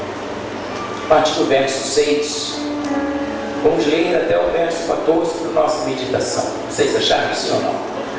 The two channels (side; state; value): both; identical; correlation 1.00